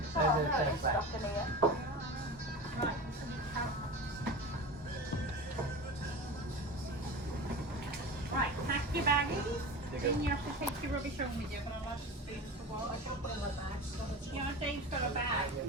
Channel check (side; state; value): both; normal; correlation 0.31